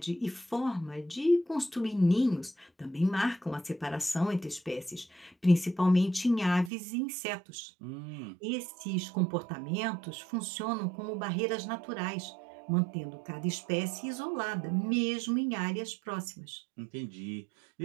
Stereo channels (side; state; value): left; drops out; at 6.7 s